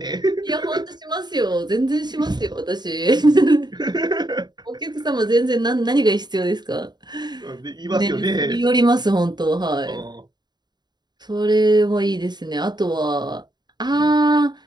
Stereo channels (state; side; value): late; left; 0.20 ms